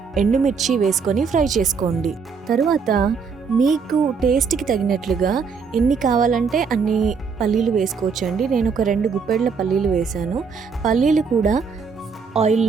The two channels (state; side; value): quieter; left; 5.6 dB